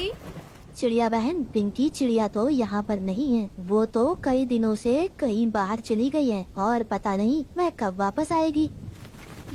चिड़िया बहन, पिंकी चिड़िया तो यहाँ पर नहीं है। वो तो कई दिनों से कहीं बाहर चली गई है और पता नहीं वह कब वापस आएगी।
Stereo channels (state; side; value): identical; both; correlation 1.00